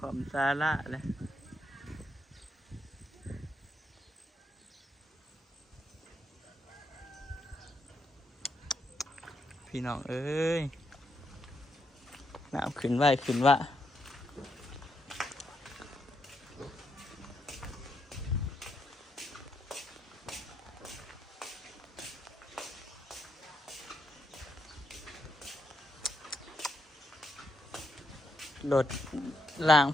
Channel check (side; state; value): both; normal; correlation 0.80